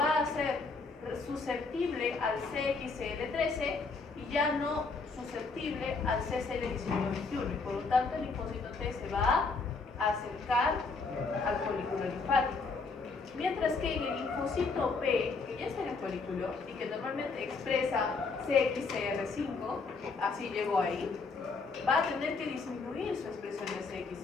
a hacer susceptible al CXCL13 y ya no susceptible al CCL19-21, y por lo tanto el linfocito T se va a acercar al folículo linfático. Mientras que en el linfocito B, que ya está en el folículo y que normalmente expresa CXCR5, así llegó ahí, va a tener que disminuir su expresión de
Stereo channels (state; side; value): quieter; right; 4.2 dB